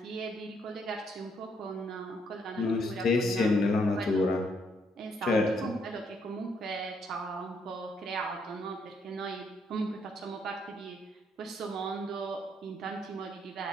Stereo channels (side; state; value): both; normal; correlation 0.72